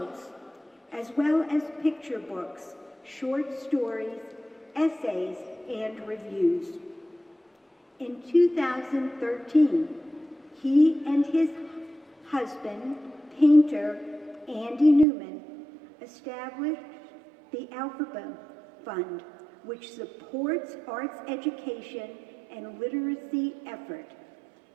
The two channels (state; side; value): drops out; left; at 15.1 s